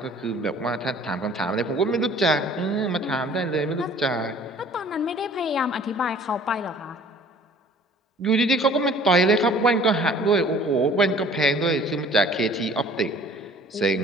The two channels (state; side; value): normal; both; correlation 0.51